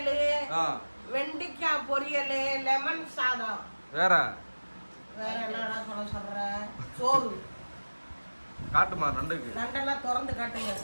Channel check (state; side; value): inverted; both; correlation -1.00